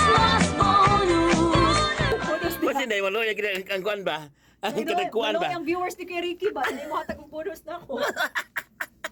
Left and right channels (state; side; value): identical; both; correlation 1.00